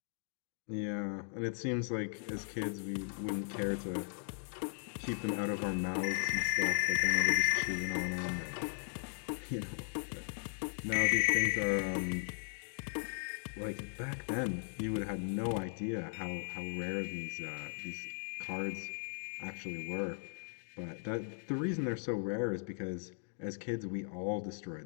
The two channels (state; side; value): silent; right; 53 dB below the other